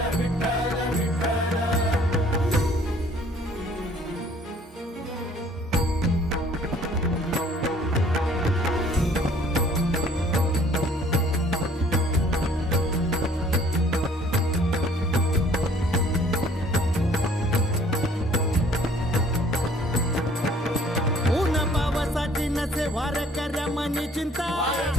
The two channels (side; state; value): both; normal; correlation 0.57